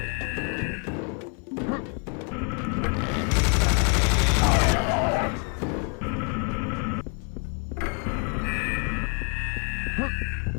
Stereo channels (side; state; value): right; quieter; 37.5 dB